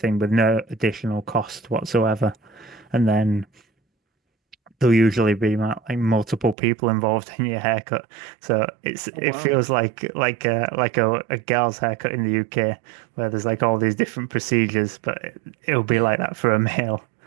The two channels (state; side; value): drops out; left; at 6.6 s